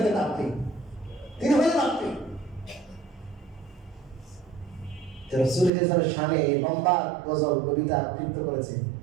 আপনি, তিনি হলেন আপনি। রাসূল সাল্লাল্লাহু শানে লম্বা গজল কবিতা আবৃত্তি করেছে,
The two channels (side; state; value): left; drops out; at 5.7 s